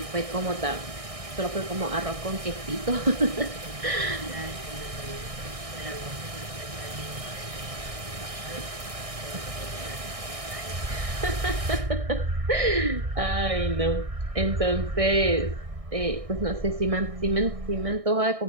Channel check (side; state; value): left; late; 1.6 ms